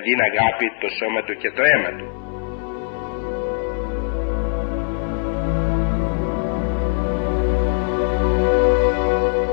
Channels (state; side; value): silent; right; 65 dB below the other